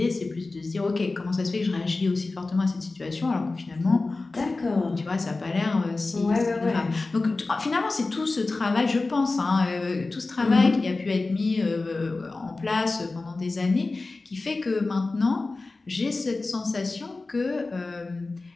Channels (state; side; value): quieter; right; 3.5 dB